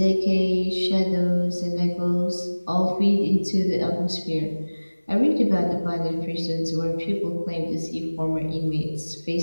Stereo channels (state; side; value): inverted; both; correlation -1.00